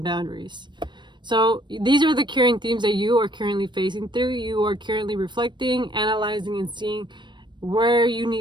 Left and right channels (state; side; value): late; left; 0.22 ms